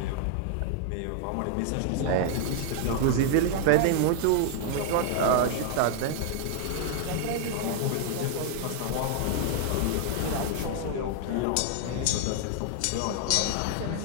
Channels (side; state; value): both; different; correlation 0.00